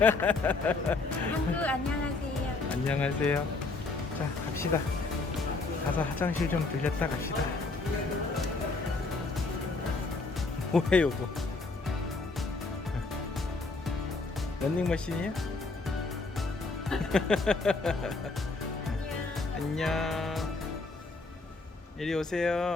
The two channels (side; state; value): right; quieter; 3.6 dB